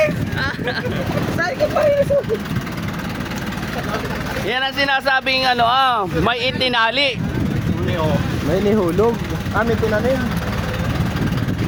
Yan ang sinasabing may itinali. May nihulog. May tinanim.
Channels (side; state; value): both; identical; correlation 1.00